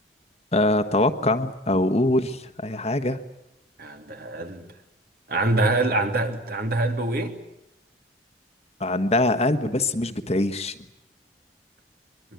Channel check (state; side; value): normal; both; correlation 0.41